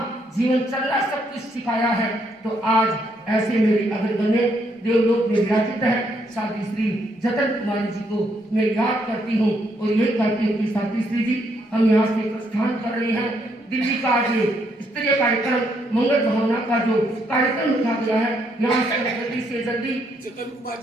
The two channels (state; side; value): normal; both; correlation 0.74